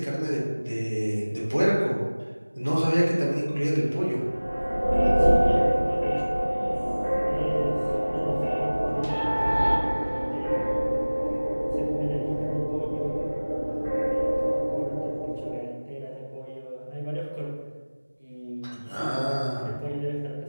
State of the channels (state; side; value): inverted; both; correlation -1.00